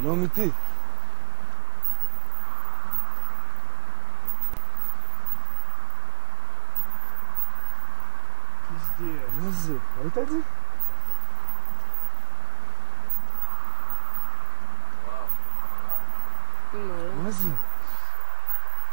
לא אמיתי. מה זה? ראית את זה? וואו. אמא, לא. מה זה?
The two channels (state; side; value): quieter; left; 23.0 dB